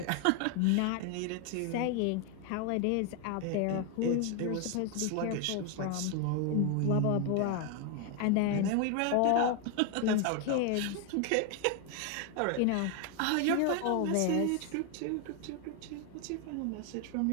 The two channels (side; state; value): both; different; correlation 0.01